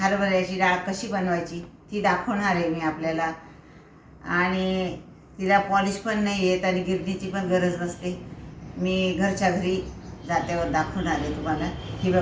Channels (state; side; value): identical; both; correlation 1.00